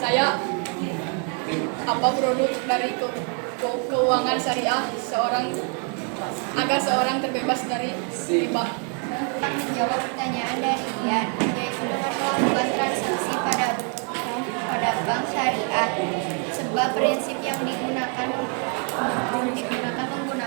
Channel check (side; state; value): left; quieter; 40.0 dB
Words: saya apa produk dari keuangan syariah agar seorang terbebas dari riba. Menjawab pertanyaan dari Ian, yaitu dengan melakukan transaksi pada bank syariah. Sebab prinsip yang digunakan